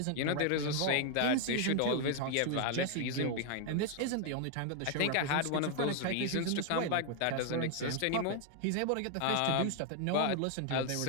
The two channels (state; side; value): different; both; correlation 0.00